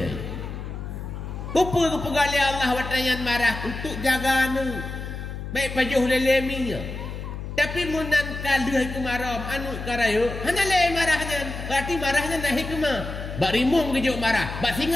Kupu pegali Allah watayan marah untuk jaga anu. Baik pajuh leleminya. Tapi munan kaluh kemarau anu karayo hanya le marahnya. Berarti marahnya nak hikmah. Bak rimung kejuk marah, bak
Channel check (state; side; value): noise; left; hum, 8 dB below the sound